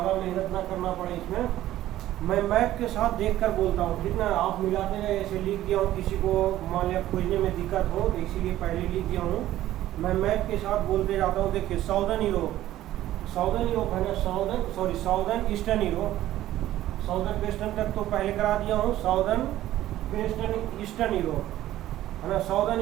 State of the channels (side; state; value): left; quieter; 14.0 dB